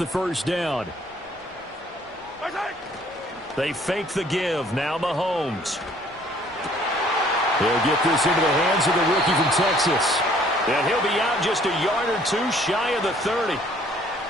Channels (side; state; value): both; normal; correlation 0.59